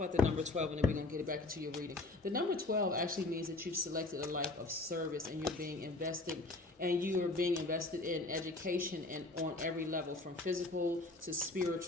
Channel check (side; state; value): right; quieter; 3.1 dB